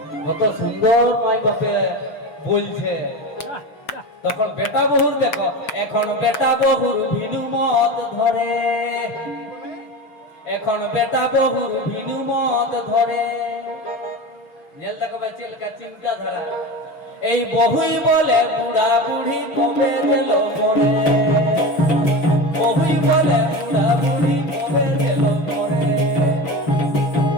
কত সুন্দর মাই বাপে বলছে। তখন বেটা বহুর দেখো, এখন বেটা বহুর ভিনু মত ধরে, এখন বেটা বহুর ভিনু মত ধরে। জেল দেখো চিলকা চিন্তাধারা। এই বহুই বলে বুড়া বুড়ি কবে গেল মরে, বহুই বলে বুড়া বুড়ি কবে গেল মরে।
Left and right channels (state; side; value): late; right; 6.5 ms